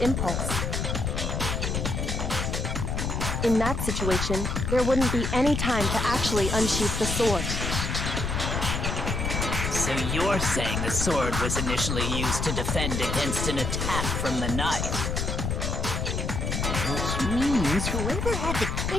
impulse. In that situation, there wouldn't be any time to actually unsheath the sword. So you're saying the sword was initially used to defend against an attack from the knife? Which means whoever had the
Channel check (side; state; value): left; noise; rumble, 1 dB below the sound